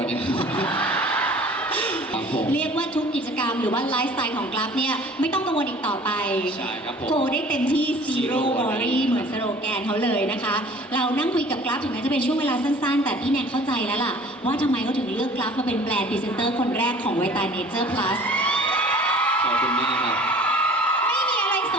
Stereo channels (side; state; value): both; normal; correlation 0.48